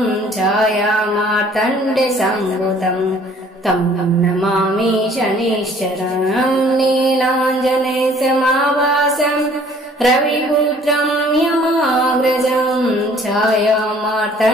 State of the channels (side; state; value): both; normal; correlation 0.55